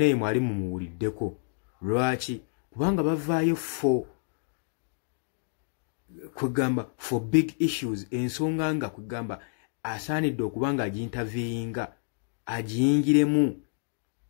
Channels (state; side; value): silent; right; digital silence